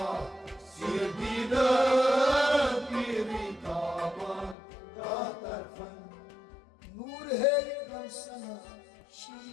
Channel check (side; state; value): right; drops out; at 4.5 s